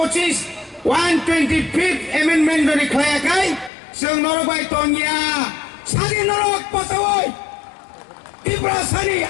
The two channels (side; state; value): right; drops out; at 3.7 s